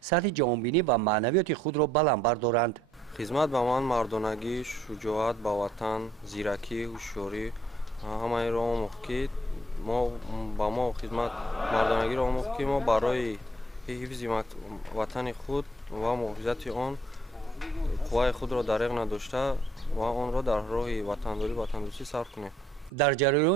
جهانبینی و معنویات خود را بلند بردارند. خدمت به من مردانگی، شجاعت به وطن، زیرکی، هوشیاری همه را آموخت که ما با ما خدمت مردانگی را آموخت که ما برای حفظ وطن خود و محافظت آن قوای خود را دریغ نداشته و آن را در راه وطنداری وطندوستی صرف کنیم. در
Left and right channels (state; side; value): normal; both; correlation 0.66